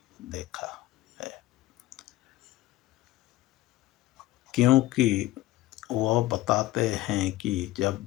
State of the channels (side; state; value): right; quieter; 16.8 dB